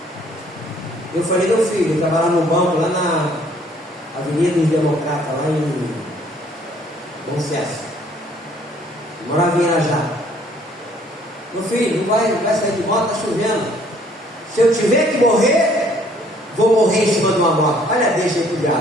Eu falei: meu filho, eu estava lá no banco, lá na Avenida dos Democratas, lá em Bom Sucesso, morava em Irajá. Meu filho, não vai sair de moto, está chovendo. Se eu tiver que morrer, vou morrer em cima de uma moto. Olha, deixa aí pro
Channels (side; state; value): both; normal; correlation 0.60